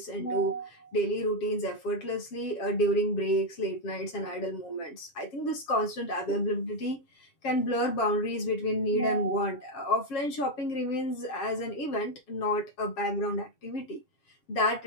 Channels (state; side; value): late; right; 7.3 ms